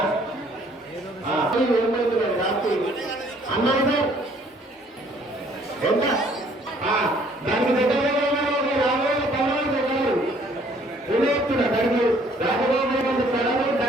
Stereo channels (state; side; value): normal; both; correlation 0.60